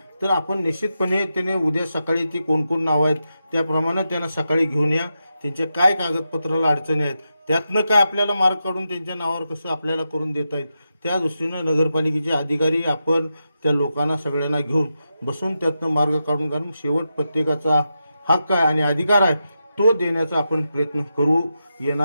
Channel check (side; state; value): both; inverted; correlation -0.88